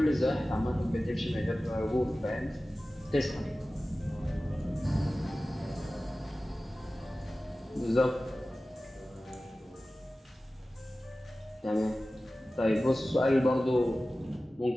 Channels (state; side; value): normal; both; correlation 0.96